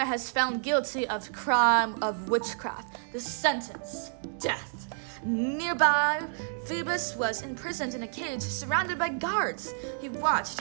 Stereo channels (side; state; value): left; silent; digital silence